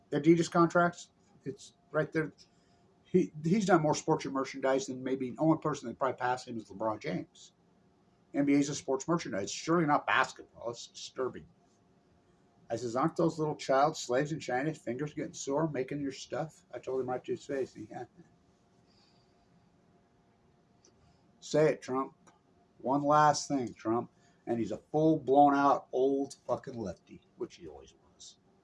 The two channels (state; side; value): identical; both; correlation 1.00